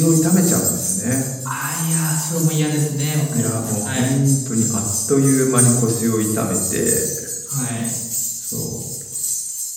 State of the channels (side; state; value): both; identical; correlation 1.00